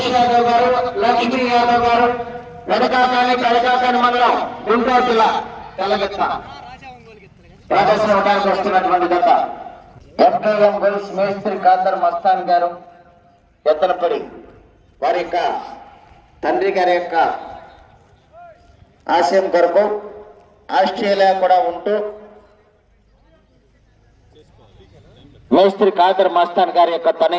యాదవ్ గారు లక్ష్మీ యాదవ్ గారు కడకాకాని మండలం గుంటూరు జిల్లా తెలగిత్త ప్రదర్శన అవడానికి వస్తున్నటువంటి గత ఎంపీఎం గోల్స్ మేస్త్రి ఖాదర్ మస్తాన్ గారు ఎత్తనపడి వారి యొక్క తండ్రి గారి యొక్క ఆశయం కొరకు ఆస్ట్రేలియా కూడా ఉంటూ మేస్త్రి ఖాదర్ మస్తాన్ గారి యొక్క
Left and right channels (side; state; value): both; identical; correlation 1.00